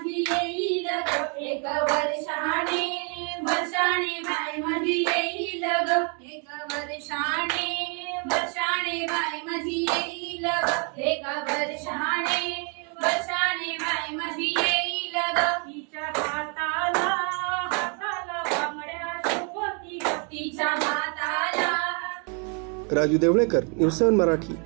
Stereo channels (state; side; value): quieter; left; 38.1 dB